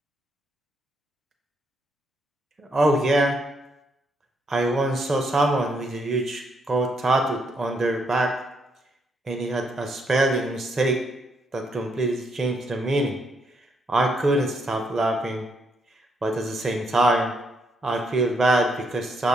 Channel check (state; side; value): normal; both; correlation 0.75